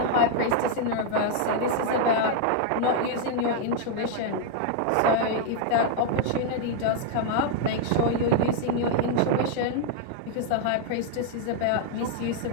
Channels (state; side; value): different; both; correlation -0.01